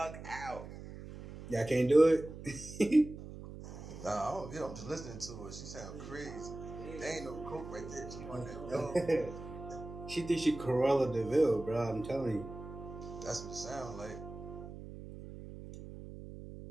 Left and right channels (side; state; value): right; noise; hum, 12 dB below the sound